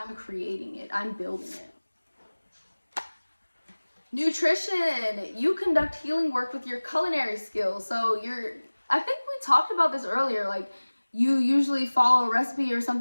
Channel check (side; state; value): both; inverted; correlation -1.00